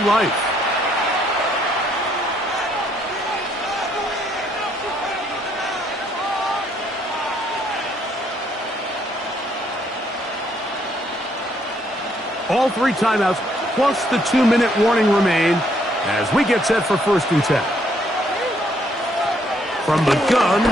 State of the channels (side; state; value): both; normal; correlation 0.69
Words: life. All 3 timeouts plus the 2-minute warning remain as we get set for 1st and 10. From the gun,